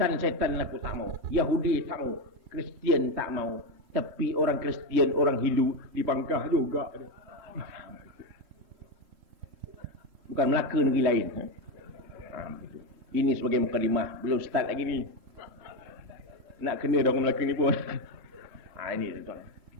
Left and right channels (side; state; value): left; late; 3.7 ms